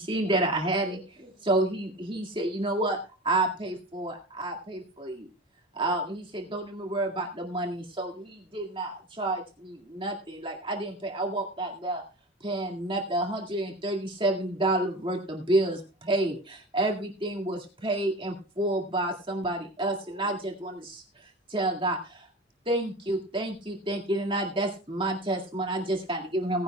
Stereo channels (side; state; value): both; normal; correlation 0.32